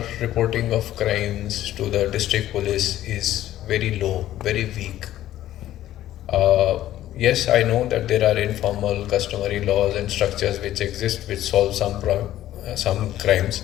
reporting of crimes to the district police is very low, very weak. Yes, I know that there are informal customary laws and structures which exist which solve some crimes,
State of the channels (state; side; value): quieter; right; 13.4 dB